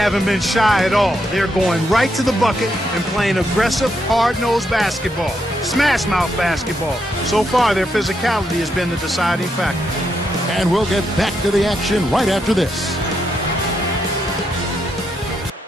been shy at all. They're going right to the bucket and playing aggressive, hard-nosed basketball. Smash-mouth basketball. So far, their physicality has been the deciding factor. And we'll get back to the action right after this.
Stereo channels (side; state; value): both; normal; correlation 0.80